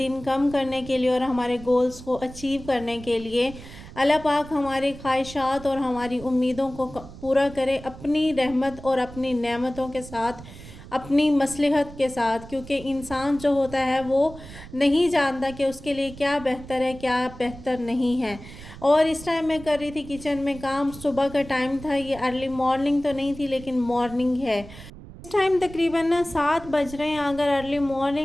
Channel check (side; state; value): right; noise; rumble, 16 dB below the sound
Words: कम करने के लिए और हमारे गोल्स को अचीव करने के लिए। अल्लाह पाक हमारी ख्वाहिशात और हमारी उम्मीदों को पूरा करे अपनी रहमत और अपनी नेमतों के साथ, अपनी मसलहत के साथ, क्योंकि इंसान जो होता है वो नहीं जानता कि उसके लिए क्या बेहतर है क्या बेहतर नहीं है। और इस टाइम मैं कर रही थी किचन में काम। सुबह का टाइम था, ये अर्ली मॉर्निंग तो नहीं थी लेकिन मॉर्निंग है। इस टाइम तकरीबन ना 7 बज रहे हैं। अगर अर्ली